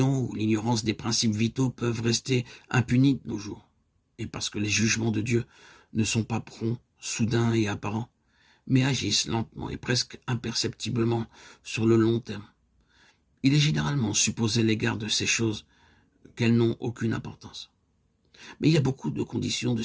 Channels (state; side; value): identical; both; correlation 1.00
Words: ou l'ignorance des principes vitaux peuvent rester impunies de nos jours. Et parce que les jugements de Dieu ne sont pas prompts, soudains et apparents, mais agissent lentement et presque imperceptiblement sur le long terme. Il est généralement supposé à l'égard de ces choses qu'elles n'ont aucune importance. Mais il y a beaucoup de conditions, de